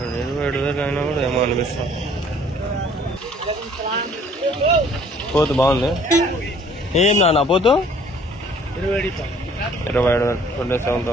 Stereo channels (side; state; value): both; normal; correlation 0.57